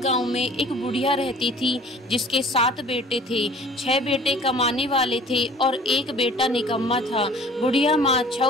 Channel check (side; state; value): both; normal; correlation 0.49